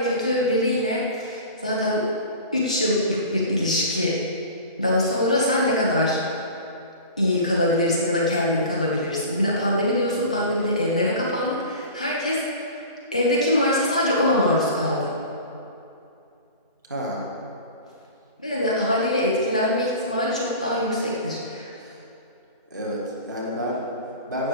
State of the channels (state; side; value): inverted; both; correlation -0.37